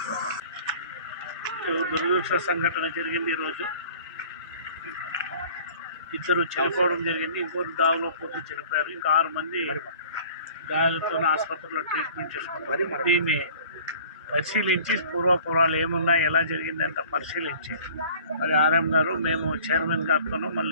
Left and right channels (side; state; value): both; inverted; correlation -0.47